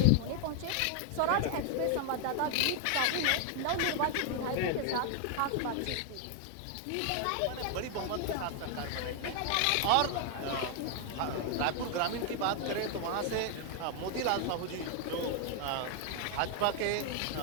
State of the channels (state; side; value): different; both; correlation 0.00